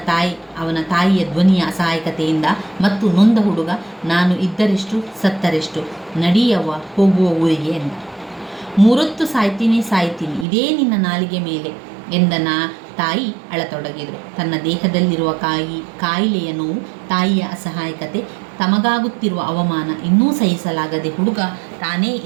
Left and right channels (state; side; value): drops out; left; at 10.5 s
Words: ತಾಯಿ, ಅವನ ತಾಯಿಯ ಧ್ವನಿಯ ಅಸಹಾಯಕತೆಯಿಂದ ಮತ್ತು ನೊಂದ ಹುಡುಗ, ನಾನು ಇದ್ದರೆಷ್ಟು ಸತ್ತರೆಷ್ಟು, ನಡಿಯವ್ವ ಹೋಗುವ ಊರಿಗೆ ಎಂದ. 3 ಹೊತ್ತು ಸಾಯ್ತೀನಿ ಇದೇ ನಿನ್ನ ನಾಲಿಗೆ ಮೇಲೆ ಎಂದ ತಾಯಿ ಅಳತೊಡಗಿದರು. ತನ್ನ ದೇಹದಲ್ಲಿರುವ ಕಾಯಿಲೆಯ ನೋವು, ತಾಯಿಯ ಅಸಹಾಯಕತೆ, ತಮಗಾಗುತ್ತಿರುವ ಅವಮಾನ ಇನ್ನೂ ಸಹಿಸಲಾಗದೆ ಹುಡುಗ ತಾನೇ